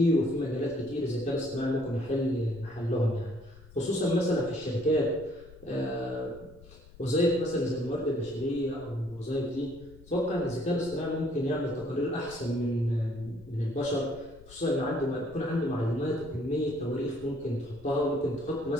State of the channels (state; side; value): noise; left; rumble, 21 dB below the sound